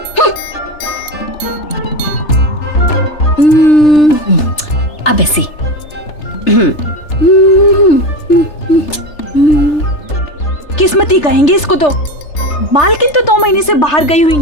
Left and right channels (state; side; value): late; right; 3.3 ms